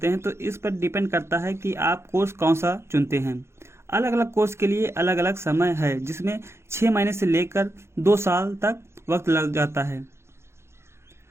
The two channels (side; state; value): left; late; 0.13 ms